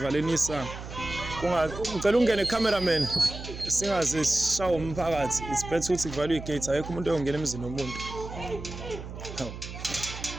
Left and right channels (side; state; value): right; noise; hum, 10 dB below the sound